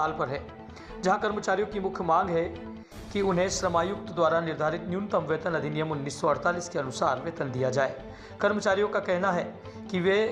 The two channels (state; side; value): identical; both; correlation 1.00